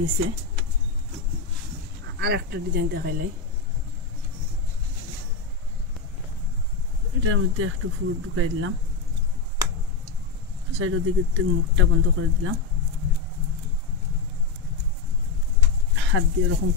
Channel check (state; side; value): quieter; right; 5.0 dB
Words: আর একটা ডিজাইন দেখাইলাই এটার মধ্যে একটু ফুল ঢুকাই দিলাম সাইডের দিকে মুখটা বন্ধ করে দিলাম হাত দিয়ে এরকম